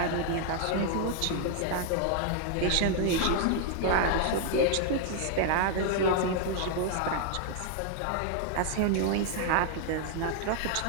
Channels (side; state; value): both; different; correlation 0.00